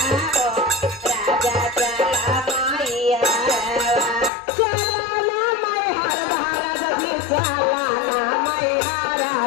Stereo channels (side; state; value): right; drops out; at 4.3 s